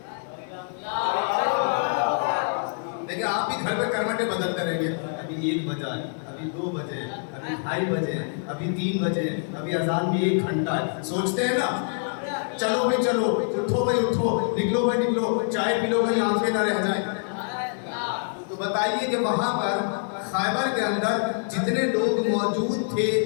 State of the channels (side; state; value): right; silent; digital silence